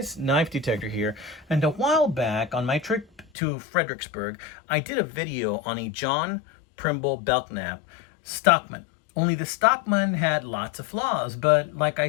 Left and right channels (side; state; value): right; drops out; at 3.2 s